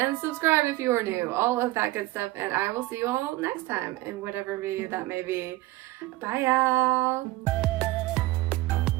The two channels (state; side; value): quieter; left; 18.4 dB